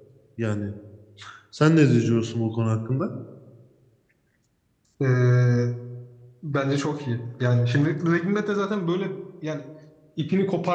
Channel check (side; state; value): both; identical; correlation 1.00